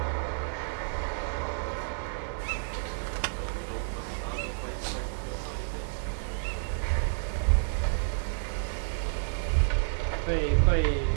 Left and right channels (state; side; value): silent; left; digital silence